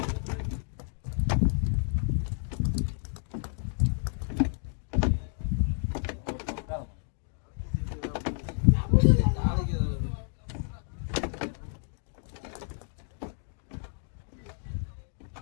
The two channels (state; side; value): silent; right; 56 dB below the other